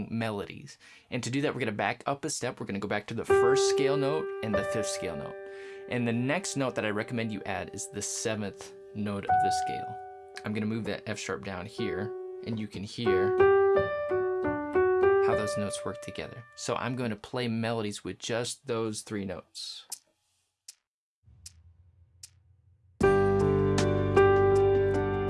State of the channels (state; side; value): identical; both; correlation 1.00